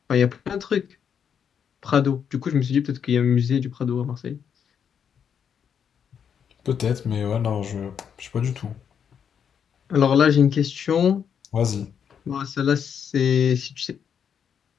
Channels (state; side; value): quieter; right; 7.7 dB